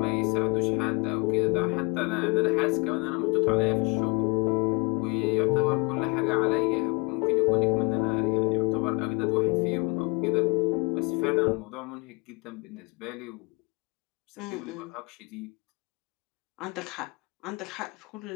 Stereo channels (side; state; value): right; quieter; 27.9 dB